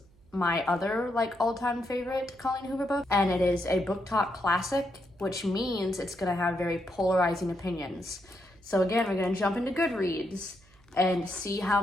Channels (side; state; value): right; noise; hum, 29 dB below the sound